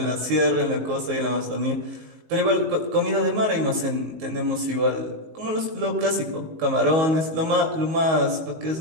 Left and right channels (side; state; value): left; late; 19 ms